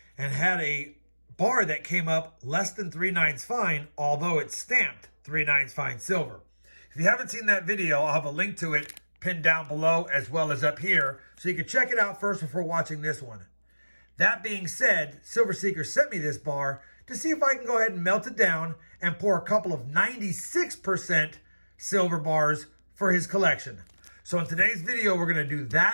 and had a bar that came up less than 3/9 fine, although it's stamped 3/9 fine silver. If you haven't seen that video, I'll have a link to it pinned down below as well as up here, so you can check it out first before watching this one. That being said, Silver Seeker sent me this bar to see if I can go ahead and melt it down and pour a couple of 96% silver bars for his collection. So in today's video, we're going to do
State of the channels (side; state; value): both; inverted; correlation -1.00